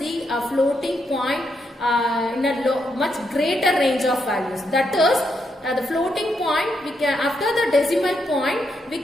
floating point in a much greater range of values. That is, the floating point, we can, after the decimal point, we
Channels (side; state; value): both; normal; correlation 0.79